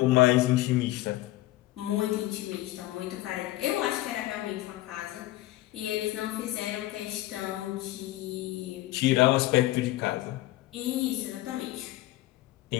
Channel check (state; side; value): quieter; right; 16.9 dB